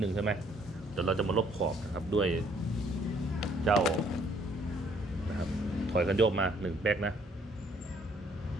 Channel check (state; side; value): normal; both; correlation 0.64